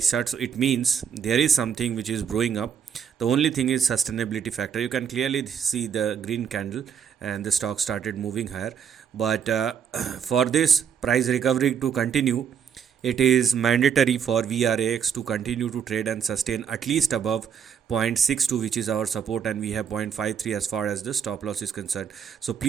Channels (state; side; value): quieter; left; 7.6 dB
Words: chart, so it means there is something which is growing up. The only thing is sustainability factor. You can clearly see the green candle and the stock started moving higher, but for this price recovery to continue, it is mandatory for VRAX to continue to trade and sustain at least above 0.62, which is our support, and we have 0.53 as far as the stop loss is concerned. So